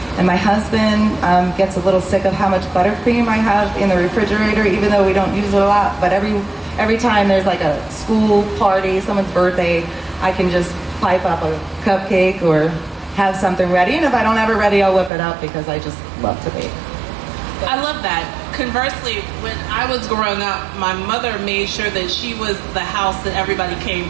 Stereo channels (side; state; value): left; drops out; at 15.1 s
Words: And my husband gets a little sick of how much buttercream I have in the refrigerator, even though we don't use it a lot. But every time there's like a school party, someone's birthday, I can just pipe up a cupcake or have something ready. And if I don't have it ready, I'll whip it up because I just love to bake. I love that. Conversely, when I was growing up, my mother made sure that she was the house that everybody came